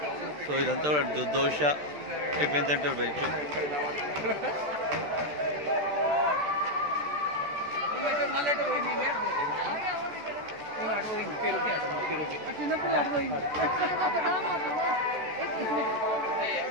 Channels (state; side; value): late; left; 13 ms